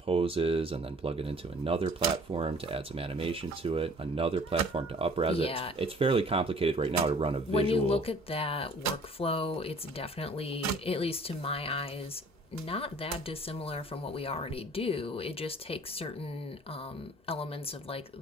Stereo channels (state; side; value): normal; both; correlation 0.53